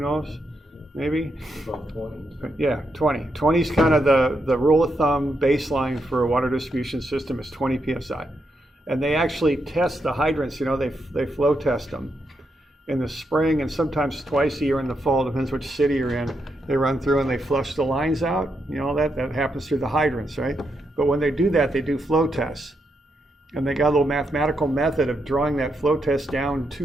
Maybe? About 20. Yeah, 20. 20 is kind of the rule of thumb baseline for a water distribution system is 20 PSI. And they actually test the hydrants, you know, they flow test them in the spring and sometimes twice a year in the fall, depends which city you're in. They run through and they flush the lines out. You know, that happens through the hydrants, right? But when they do that, they do flow tests. And they got a little mathematical method of drawing that flow test down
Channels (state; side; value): normal; both; correlation 0.82